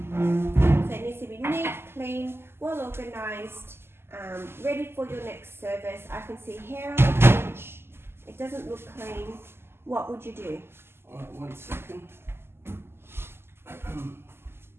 it needs to be neat, clean, well organised, ready for your next service. I can see hair on the bench. It doesn't look clean. What would you do? Alright, 1 second.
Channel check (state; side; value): late; left; 0.12 ms